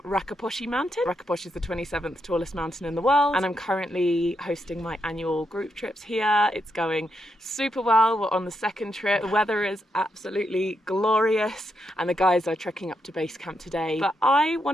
Rakaposhi Mountain. Rakaposhi is the 27th tallest mountain in the world, and I'm currently hosting my annual group trips here. It's going super well. We're on the second trip. The weather is absolutely glorious, and the guys are trekking up to base camp today. But I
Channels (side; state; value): both; normal; correlation 0.82